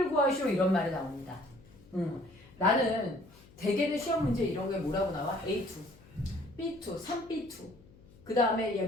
구하시오 이런 말이 나옵니다. 나는 대개는 시험 문제 이런 게 뭐라고 나와? A2, B2, 3B2. 그 다음에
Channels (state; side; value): noise; left; hum, 24 dB below the sound